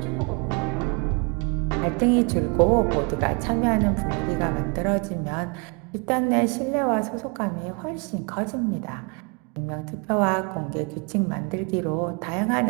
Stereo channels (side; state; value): left; quieter; 32.5 dB